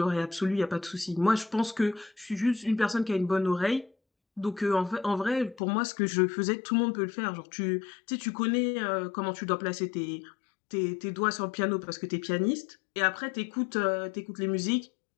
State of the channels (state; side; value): drops out; right; at 5.6 s